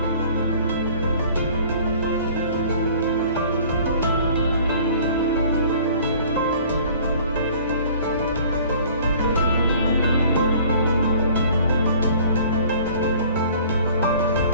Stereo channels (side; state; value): both; inverted; correlation -0.51